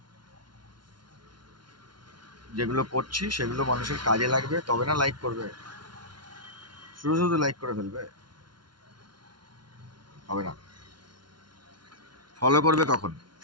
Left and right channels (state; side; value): late; left; 0.71 ms